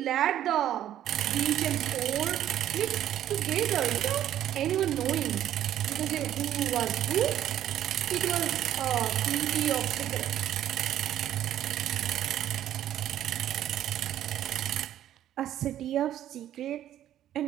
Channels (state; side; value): quieter; left; 11.8 dB